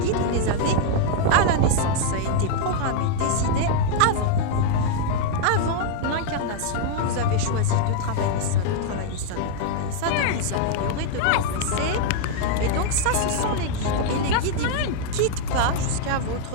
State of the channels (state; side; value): different; both; correlation 0.00